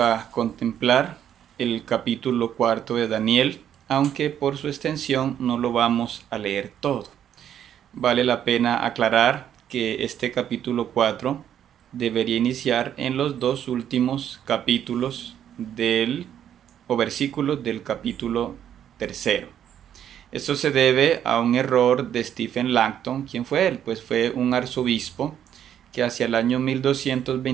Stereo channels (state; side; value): quieter; left; 9.9 dB